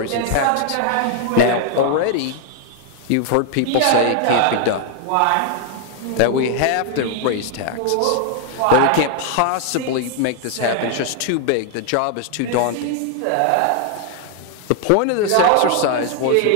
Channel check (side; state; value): both; different; correlation 0.00